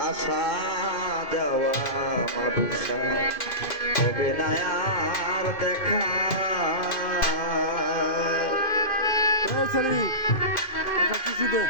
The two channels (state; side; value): late; right; 2.5 ms